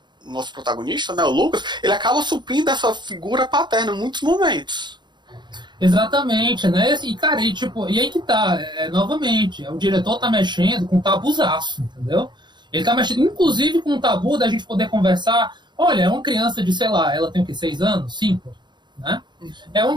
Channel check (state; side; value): late; left; 0.22 ms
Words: nosso protagonista, né, o Lucas, ele acaba suprindo essa figura paterna em muitos momentos. Exatamente, né? E, cara, e aí que tá, novamente, o diretor tá mexendo com um tabuzaço, entendeu? Ele tá mexendo, inclusive, com um tabu da gente poder conversar. Olha, é uma criança de, sei lá, ela tem o quê? 6 anos? 5? Né? É